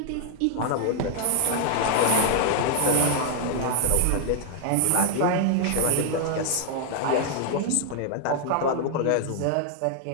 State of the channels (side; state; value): both; different; correlation 0.00